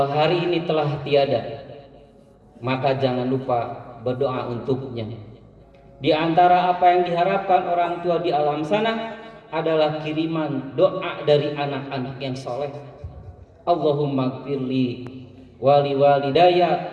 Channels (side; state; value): both; identical; correlation 1.00